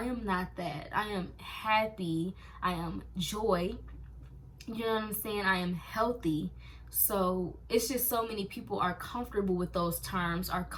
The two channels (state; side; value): identical; both; correlation 1.00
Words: am not that. I am happy. I am joy. You know what I'm saying? I am healthy. So it's just so many people are comfortable with those terms, are